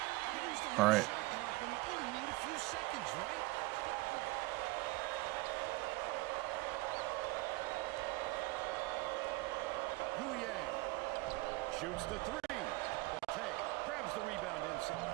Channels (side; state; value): left; quieter; 21.7 dB